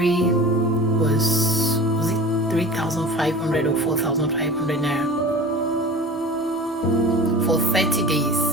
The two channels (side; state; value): both; normal; correlation 0.36